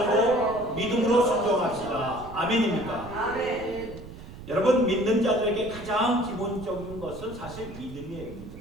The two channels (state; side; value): noise; right; rumble, 14 dB below the sound